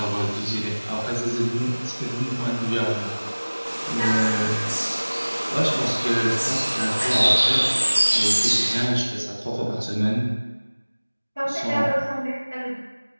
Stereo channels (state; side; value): inverted; both; correlation -1.00